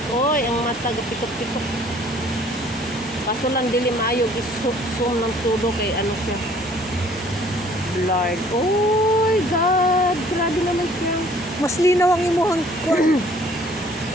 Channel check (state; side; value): normal; both; correlation 0.56